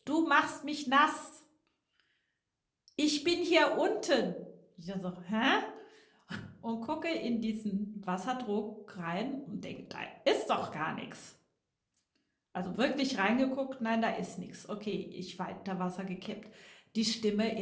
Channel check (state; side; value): identical; both; correlation 1.00